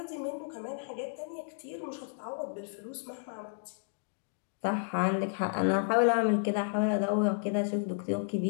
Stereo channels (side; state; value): right; silent; digital silence